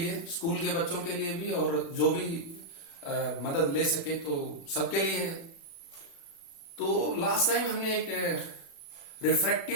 स्कूल के बच्चों के लिए भी और जो भी मदद ले सके तो सबके लिए है। तो लास्ट टाइम हमने एक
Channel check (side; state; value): right; late; 36 ms